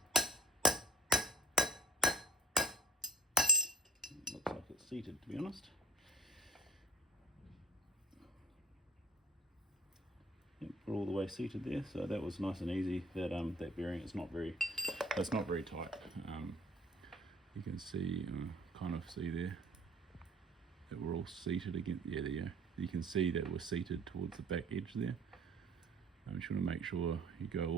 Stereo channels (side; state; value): both; normal; correlation 0.47